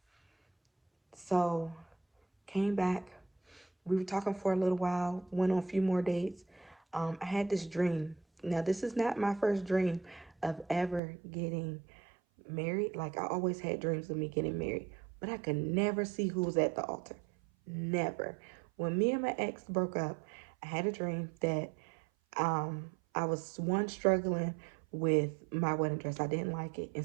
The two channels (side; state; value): left; drops out; at 11.0 s